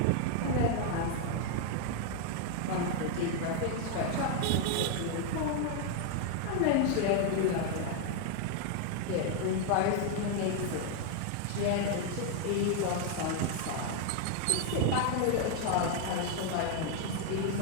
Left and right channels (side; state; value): both; different; correlation 0.00